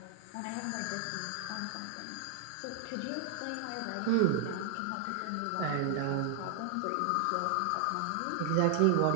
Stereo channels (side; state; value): both; different; correlation 0.00